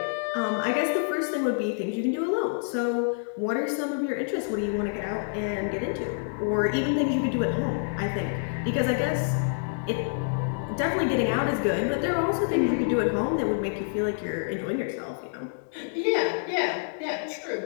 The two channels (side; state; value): right; silent; digital silence